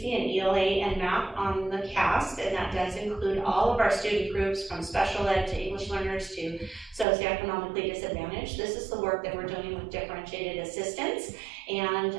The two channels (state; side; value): drops out; left; at 7.1 s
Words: in ELA and math on the CAST, and that does include all of our student groups from special ed to English learners to socioeconomically disadvantaged. This is the work that we're doing with differentiated assistance and